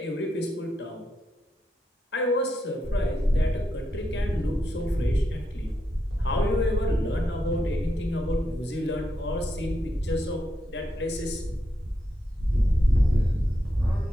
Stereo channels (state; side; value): normal; both; correlation 0.84